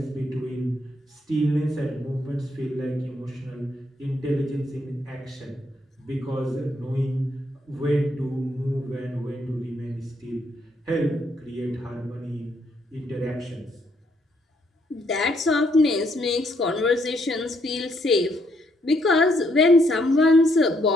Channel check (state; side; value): normal; both; correlation 0.73